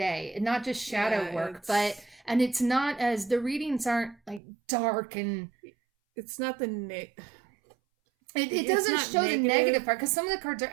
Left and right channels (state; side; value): drops out; left; at 4.4 s